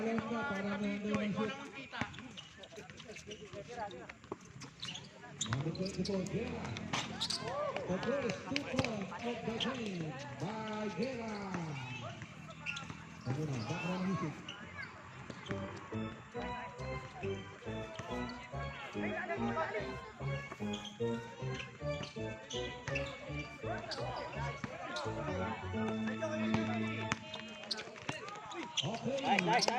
ka para nandun ang shoot. Number 24, Guerra. The first 2 points of the game by Guerra. Ano na, background music. Okay. Nice.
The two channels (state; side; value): identical; both; correlation 1.00